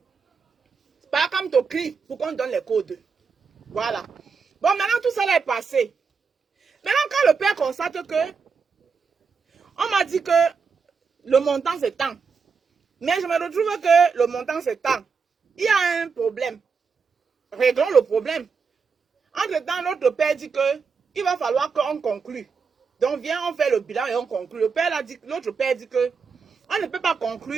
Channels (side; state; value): left; quieter; 5.4 dB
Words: Par comme tu cries pour qu'on donne les codes. Voilà. Bon, maintenant tout ça là est passé. Maintenant quand le père constate que... On m'a dit que le montant c'est tant. Mais je me retrouve que le montant c'est tant. Il y a un problème. Réglons le problème. Entre-temps, notre père dit que il va falloir qu'on conclue. Donc, viens, on fait le bilan et on conclut. L'autre père dit que on ne peut pas